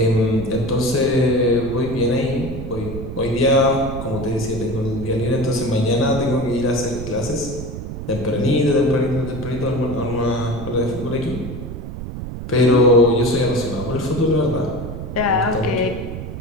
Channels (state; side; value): noise; right; rumble, 8 dB below the sound